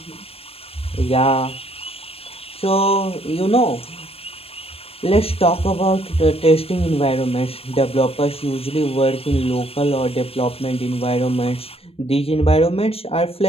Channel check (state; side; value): late; right; 0.28 ms